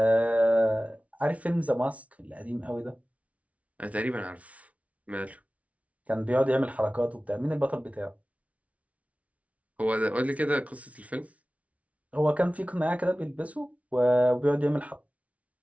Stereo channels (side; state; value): left; late; 0.066 ms